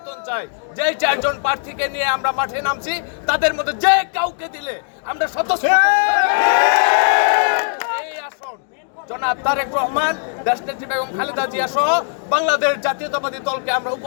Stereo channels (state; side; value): silent; right; digital silence